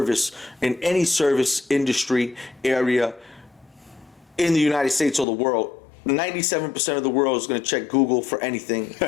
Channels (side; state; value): right; drops out; at 5.2 s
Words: in any service industry area in the United States or the world. 97% of the world is going to check Google for anything